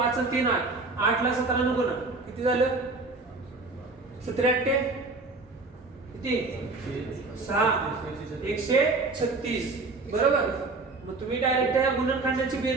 आणि 3 8. 8 ला 17 ने गुणा, किती झालं? 17 8 किती? 6 136. बरोबर. मग तुम्ही डायरेक्ट या गुणनखंडाची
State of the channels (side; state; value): left; quieter; 3.5 dB